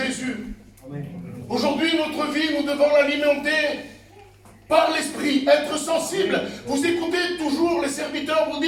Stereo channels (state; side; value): identical; both; correlation 1.00